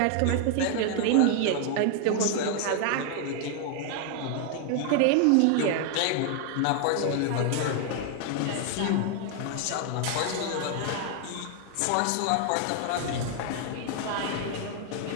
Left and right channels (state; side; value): different; both; correlation 0.00